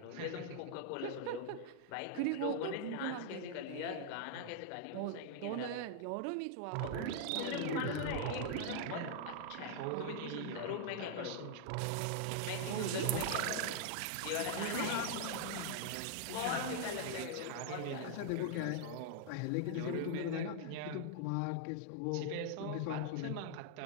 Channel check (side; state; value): both; different; correlation -0.01